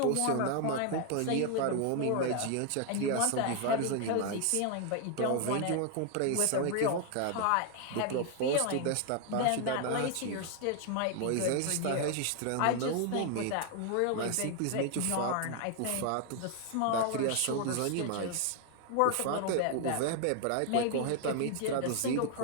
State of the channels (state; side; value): different; both; correlation 0.00